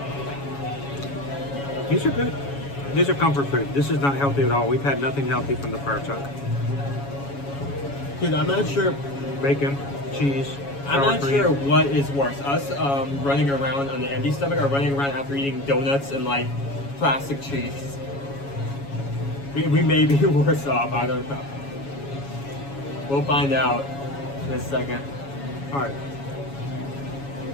These are good. These are comfort food. This is not healthy at all. We've had nothing healthy from the fire truck. Dude, I'm not sure. Bacon, cheese. I'm sour not cream. sure what is worse, us running around on an empty stomach or running around after eating donuts and like plastic cheese. We may be worse off. I don't know. We'll find out in a second. All right.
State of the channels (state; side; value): late; right; 7.2 ms